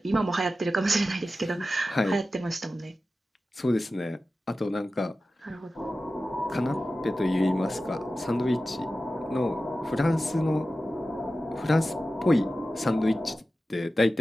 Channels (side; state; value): both; normal; correlation 0.94